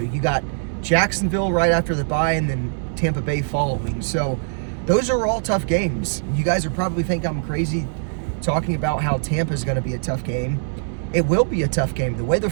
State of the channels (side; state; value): left; silent; 64 dB below the other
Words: you got Jacksonville right after the bye, and then Tampa Bay following. So those are all tough games. You guys are probably think I'm crazy talking about how Tampa is going to be a tough game. It will be a tough game. The way the